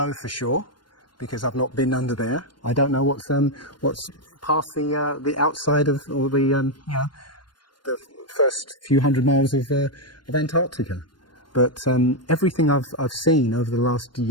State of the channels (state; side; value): late; right; 0.71 ms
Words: for sure, because I've not been under there. I don't know what's past the outside of, or the you know, the first few hundred miles of Antarctica. But everything I've seen over the last